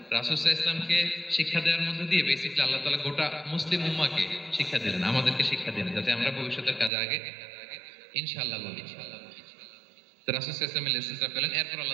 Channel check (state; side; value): drops out; left; at 6.9 s